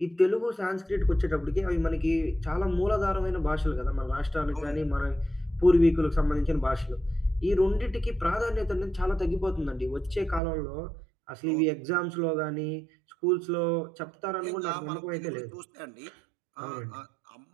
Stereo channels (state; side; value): drops out; left; at 10.4 s